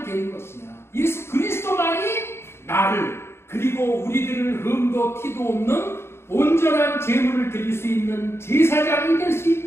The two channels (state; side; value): late; right; 0.12 ms